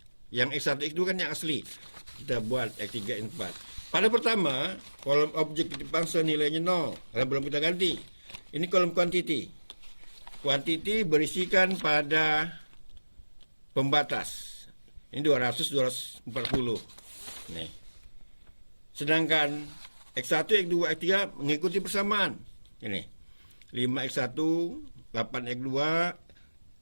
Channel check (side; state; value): both; inverted; correlation -1.00